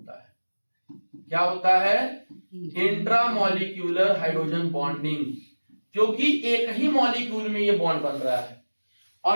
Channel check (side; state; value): both; inverted; correlation -1.00